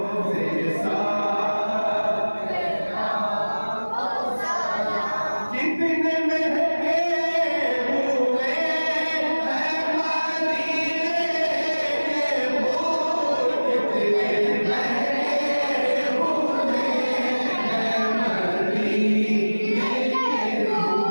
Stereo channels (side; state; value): both; inverted; correlation -1.00